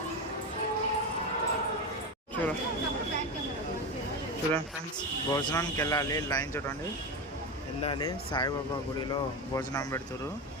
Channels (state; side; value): normal; both; correlation 0.18